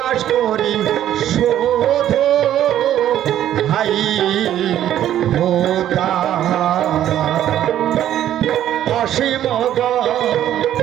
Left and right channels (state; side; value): quieter; left; 11.6 dB